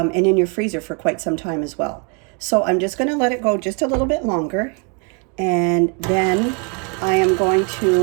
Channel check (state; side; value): quieter; left; 36.0 dB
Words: in your freezer for quite some time as well. So I'm just going to let it go just a little bit longer, and then I am going